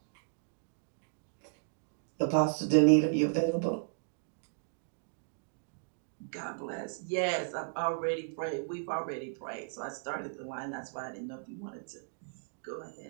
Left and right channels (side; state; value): left; silent; digital silence